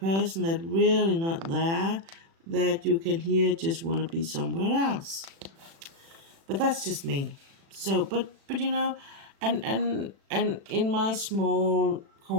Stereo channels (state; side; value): late; left; 36 ms